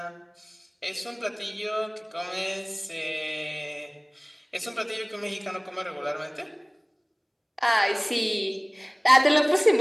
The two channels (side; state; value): both; identical; correlation 1.00